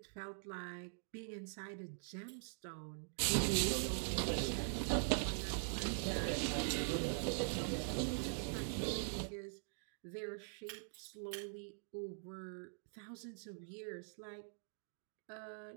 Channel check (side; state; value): left; silent; digital silence